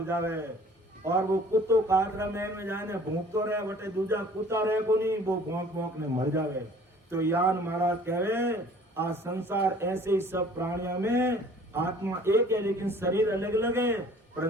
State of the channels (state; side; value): normal; both; correlation 0.52